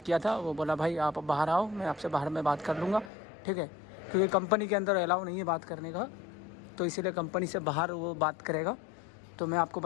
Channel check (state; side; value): drops out; right; at 3.1 s